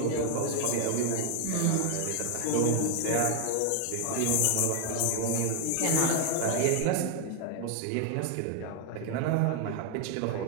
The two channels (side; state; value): both; different; correlation 0.00